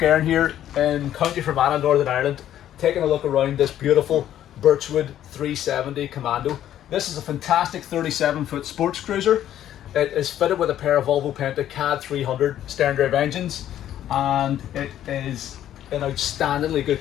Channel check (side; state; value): right; quieter; 11.5 dB